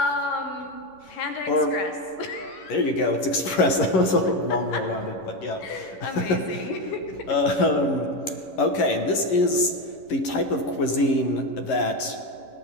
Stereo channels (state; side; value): late; right; 11 ms